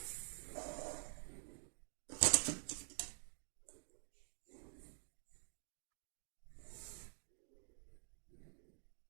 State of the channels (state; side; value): silent; left; digital silence